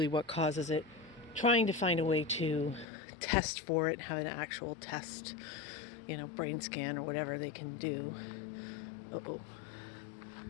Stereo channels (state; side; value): drops out; right; at 2.9 s